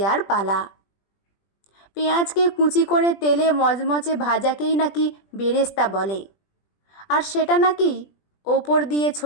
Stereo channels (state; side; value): late; right; 20 ms